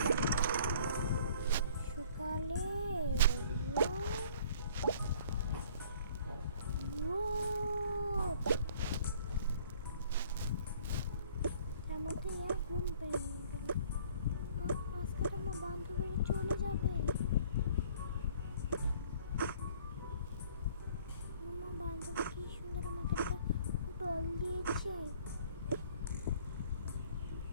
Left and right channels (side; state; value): both; inverted; correlation -0.54